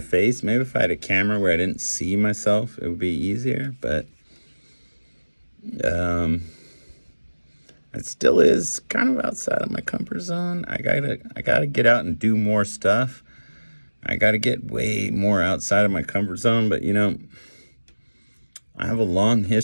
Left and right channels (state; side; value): inverted; both; correlation -1.00